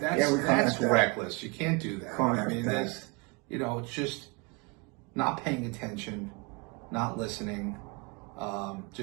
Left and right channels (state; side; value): quieter; left; 29.2 dB